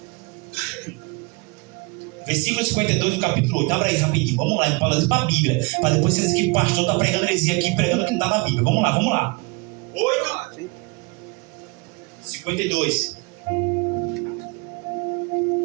Versículo 52 do capítulo 8. Abra aí rapidinho. Vamos lá, para a Bíblia. Para depois vocês dizem que o pastor está pregando heresia aqui, pregando que não está na Bíblia. Vamos lá. 8, 52.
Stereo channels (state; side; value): quieter; left; 27.9 dB